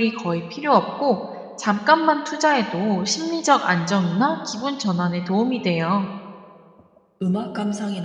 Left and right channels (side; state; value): both; identical; correlation 1.00